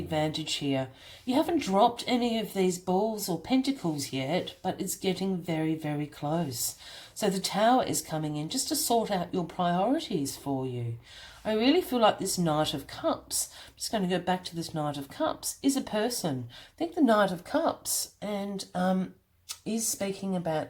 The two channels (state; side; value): identical; both; correlation 1.00